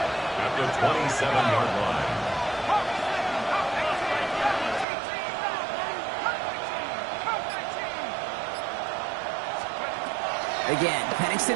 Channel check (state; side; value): drops out; left; at 4.9 s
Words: at the 27-yard line. Again, Penix to